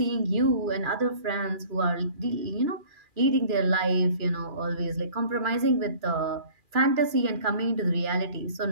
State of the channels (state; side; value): late; left; 2.4 ms